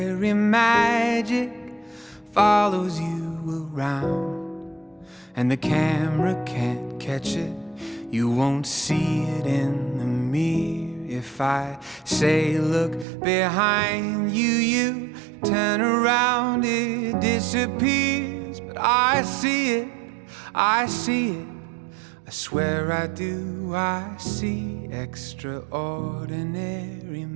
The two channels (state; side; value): drops out; left; at 13.1 s